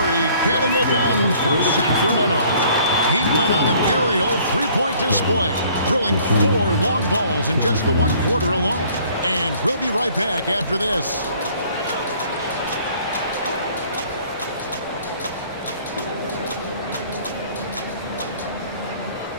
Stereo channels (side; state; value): both; inverted; correlation -0.57